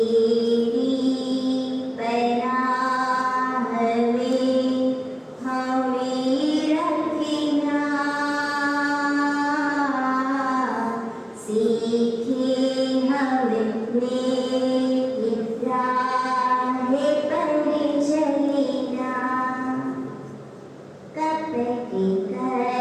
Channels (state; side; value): identical; both; correlation 1.00